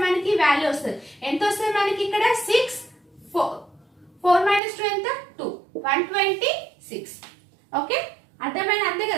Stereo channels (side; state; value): left; drops out; at 4.6 s